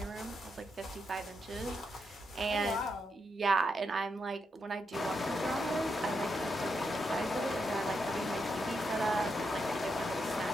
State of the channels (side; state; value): both; normal; correlation 0.83